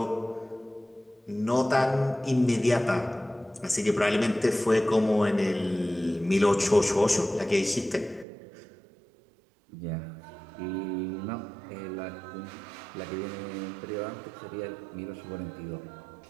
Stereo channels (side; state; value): left; drops out; at 8.2 s